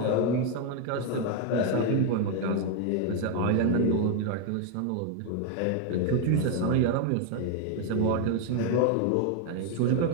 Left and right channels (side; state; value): both; different; correlation 0.01